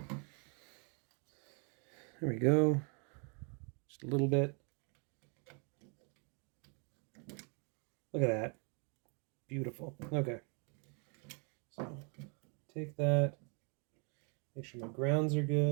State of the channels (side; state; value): left; quieter; 37.1 dB